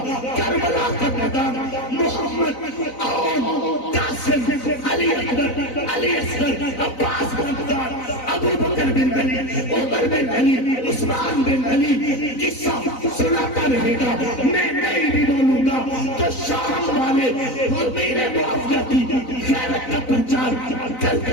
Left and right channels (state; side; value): late; right; 4.0 ms